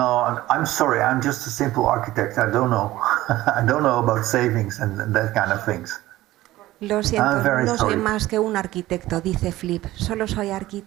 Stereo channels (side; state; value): left; quieter; 16.3 dB